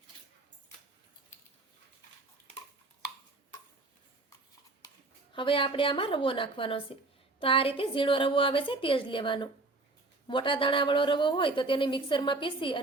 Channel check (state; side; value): quieter; left; 3.2 dB